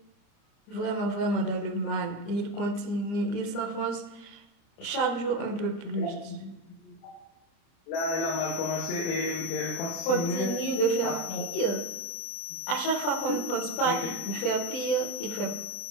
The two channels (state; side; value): late; right; 30 ms